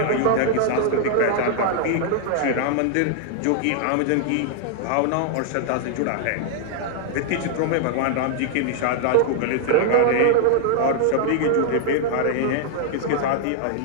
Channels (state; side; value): different; both; correlation 0.00